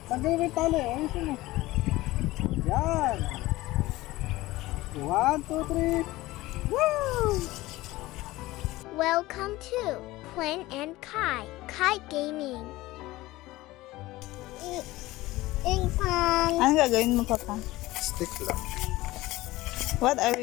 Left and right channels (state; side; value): quieter; right; 18.5 dB